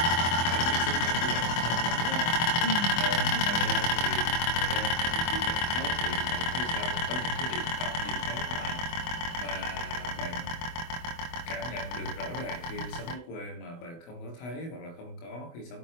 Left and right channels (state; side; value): late; right; 24 ms